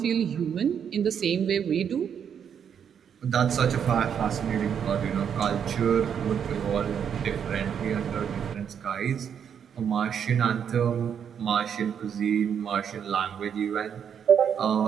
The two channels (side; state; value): left; quieter; 8.0 dB